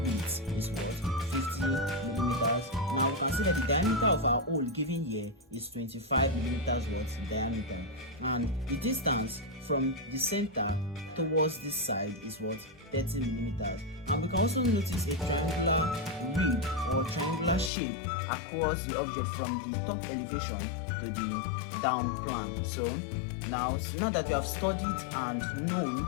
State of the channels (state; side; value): drops out; right; at 17.7 s